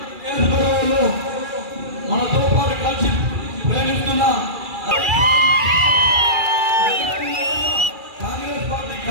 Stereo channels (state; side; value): late; left; 2.4 ms